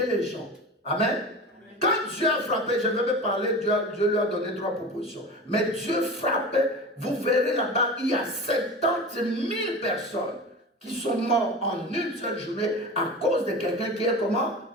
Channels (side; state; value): both; normal; correlation 0.32